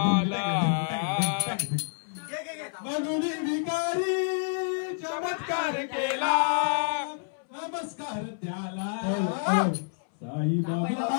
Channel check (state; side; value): silent; right; 59 dB below the other